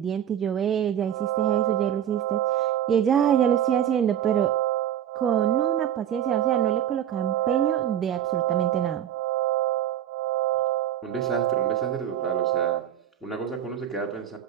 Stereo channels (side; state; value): left; quieter; 10.3 dB